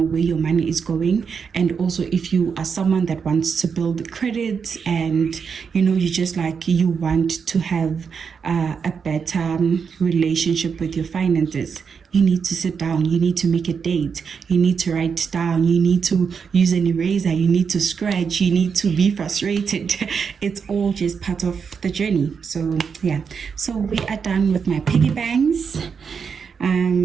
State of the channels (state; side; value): quieter; left; 6.2 dB